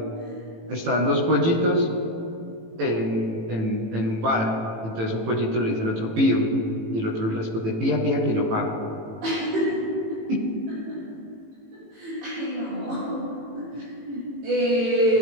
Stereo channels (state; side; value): late; left; 18 ms